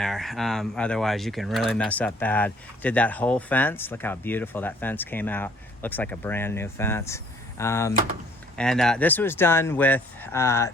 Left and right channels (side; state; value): both; normal; correlation 0.60